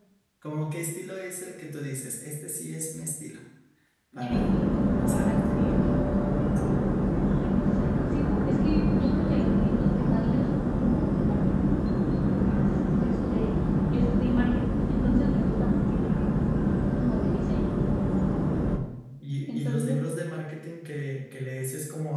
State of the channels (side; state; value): both; identical; correlation 1.00